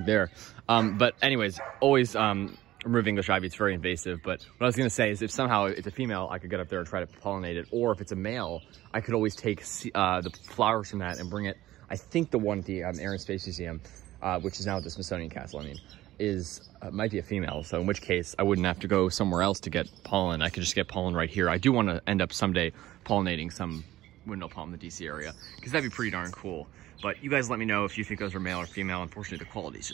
there. But anyways, always remove English ivy. It's very invasive. But what I was going to say is, if somehow it's a female, I could get up there and try to pollinate it. Or if it's a male, I could always take the flowers from that and bring it. I think the one at the Air and Space Museum, which is now at the Smithsonian Castle, I mean, might be a female. So in which case, I wouldn't have to go somewhere else to get pollen. I could just get pollen right here. I do want to end up someday pollinating some windmill palm in the DC area, because that'd be pretty darn cool. But you guys let me know if you think those are male or female. Unfortunately, the quality is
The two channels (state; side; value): quieter; left; 15.4 dB